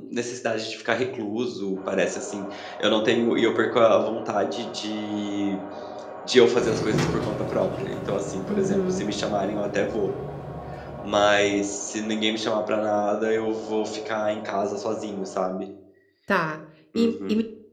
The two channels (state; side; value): identical; both; correlation 1.00